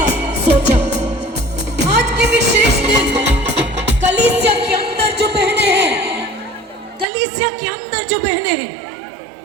सोचा। आज के विशेष दिन कलीसिया के अंदर जो बहनें हैं, कलीसिया के अंदर जो बहनें हैं,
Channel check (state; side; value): drops out; left; at 7.1 s